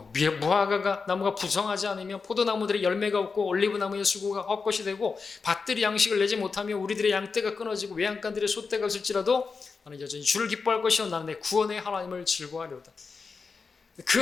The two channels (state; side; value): quieter; right; 4.9 dB